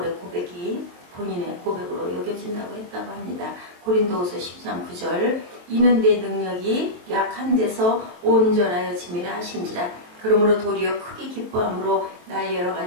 고백이 본인의 고백으로 여겨진다고 했다고 합니다. 고린도후서 10장 9절 이는 내 능력이 약한 데서 온전하여 짐이라 하신지라. 그러므로 도리어 크게 기뻐함으로 나의 여러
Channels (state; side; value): late; left; 23 ms